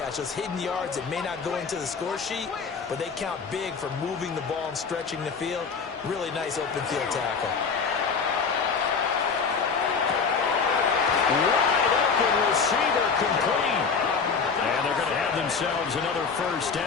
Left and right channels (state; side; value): quieter; right; 5.4 dB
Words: Those hidden yards that may not go into the score sheet, but they count big for moving the ball and stretching the field. Really nice open field tackle. Wide open receiver complete. And they're going to have themselves another 1st